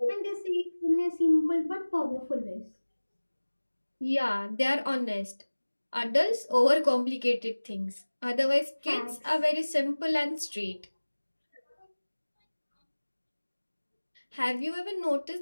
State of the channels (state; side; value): inverted; both; correlation -1.00